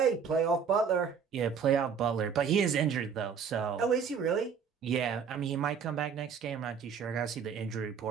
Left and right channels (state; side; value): quieter; left; 6.7 dB